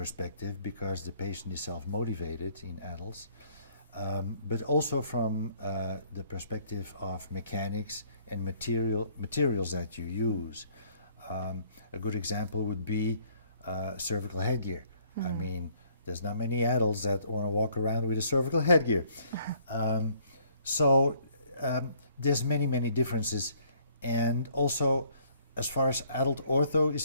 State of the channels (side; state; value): both; inverted; correlation -0.62